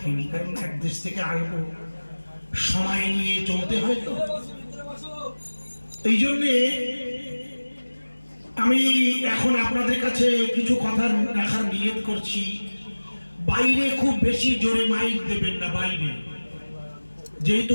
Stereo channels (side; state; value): both; inverted; correlation -1.00